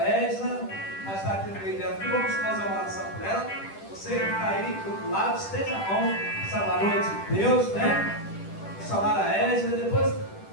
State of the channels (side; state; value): right; late; 10 ms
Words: Edna, mas está aqui no meio dela. E vamos fazer uma oração por ela. Você que está aí do outro lado, esteja a mão, essa valor de Deus, né? Missionária Edna, depois.